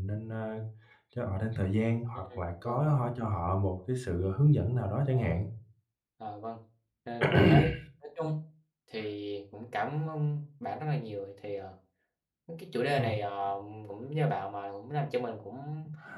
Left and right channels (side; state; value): both; identical; correlation 1.00